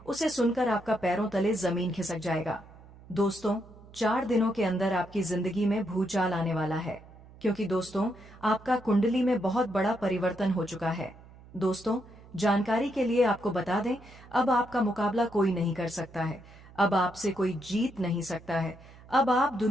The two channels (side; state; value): right; noise; hum, 21 dB below the sound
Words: उसे सुनकर आपका पैरों तले जमीन खिसक जाएगा। दोस्तों, 4 दिनों के अंदर आपकी जिंदगी में भूचाल आने वाला है, क्योंकि दोस्तों, आपका कुंडली में बहुत बड़ा परिवर्तन हो चुका है। दोस्तों, जानकारी के लिए आपको बता दें, अब आपका मुकाबला कोई नहीं कर सकता है। अब आपसे कोई जीत नहीं सकता है। अब आप